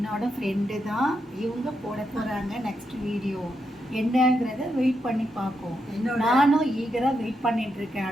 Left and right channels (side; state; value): both; normal; correlation 0.83